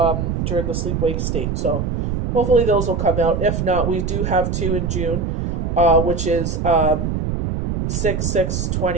during the sleep-wake state. So hopefully those will come out. If not, we do have 2 in June, which is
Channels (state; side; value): noise; right; rumble, 1 dB below the sound